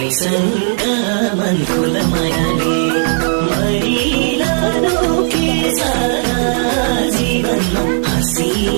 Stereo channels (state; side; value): silent; left; 56 dB below the other